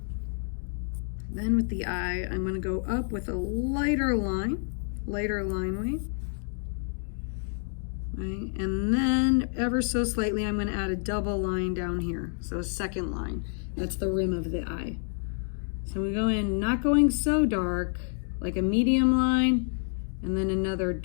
then with the eye, I'm gonna go up with a lighter line weight. Right, and then ever so slightly, I'm gonna add a double line down here. So a second line, that's the rim of the eye. So we go in, not going so dark, like a medium line, and then another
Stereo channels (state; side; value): silent; right; 59 dB below the other